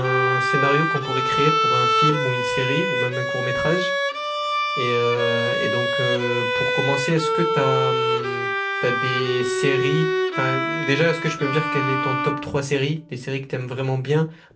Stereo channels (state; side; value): identical; both; correlation 1.00